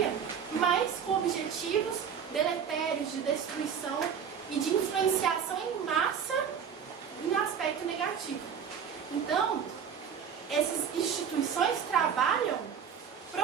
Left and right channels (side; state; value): left; quieter; 7.4 dB